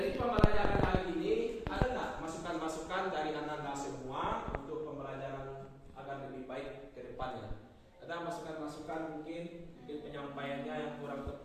pembelajaran hari ini ada nggak masukan-masukan dari anda semua untuk pembelajaran agar lebih baik ke depannya? Ada masukan-masukan mungkin penyampaiannya yang kurang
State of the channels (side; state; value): both; identical; correlation 1.00